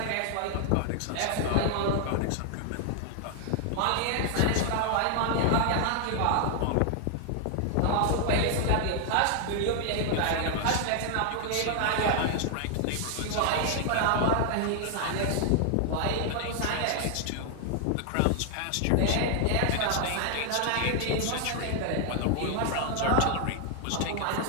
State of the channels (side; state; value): both; different; correlation 0.00